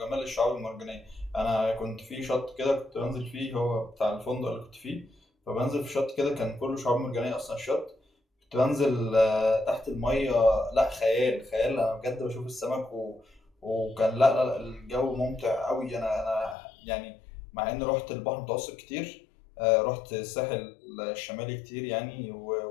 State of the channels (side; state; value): right; drops out; at 16.6 s